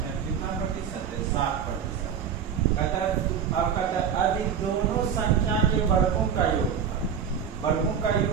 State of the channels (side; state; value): left; quieter; 7.6 dB